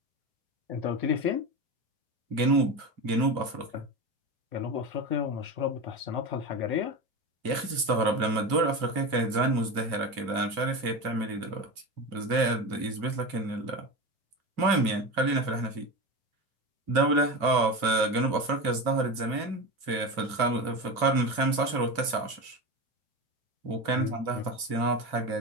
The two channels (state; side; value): late; left; 2.6 ms